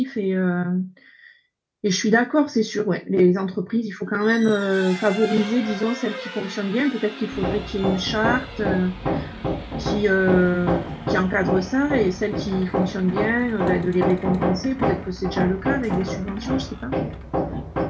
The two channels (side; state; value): both; identical; correlation 1.00